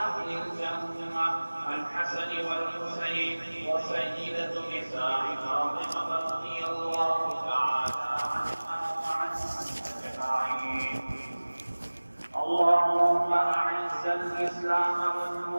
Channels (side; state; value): both; inverted; correlation -1.00